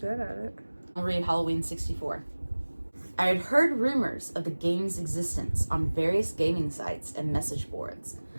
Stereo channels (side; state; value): both; inverted; correlation -1.00